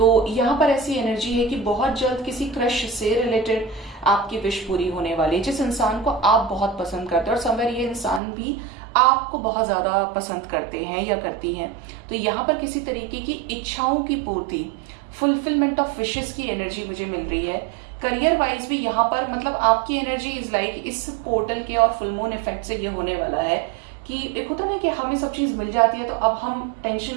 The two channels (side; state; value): left; drops out; at 8.2 s